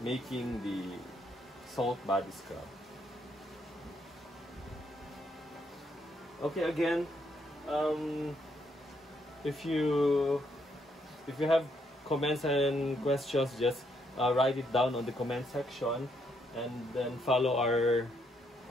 making the salt body scrub. Okay, again, if you have comments and questions, just write it down on the comment section, and then follow our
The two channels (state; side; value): normal; both; correlation 0.74